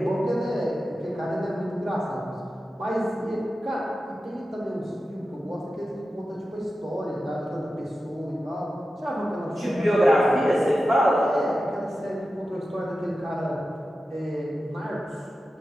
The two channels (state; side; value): normal; both; correlation 0.92